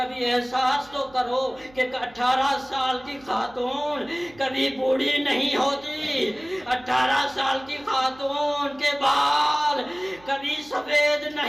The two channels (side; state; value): right; noise; hum, 25 dB below the sound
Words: احساس تو کرو کہ 18 سال کی خاتون کبھی بوڑھی نہیں ہوتی. 18 سال کی خاتون کے بال کبھی سفید